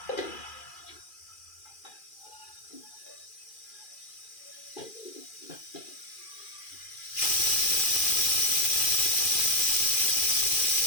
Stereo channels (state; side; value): late; right; 2.4 ms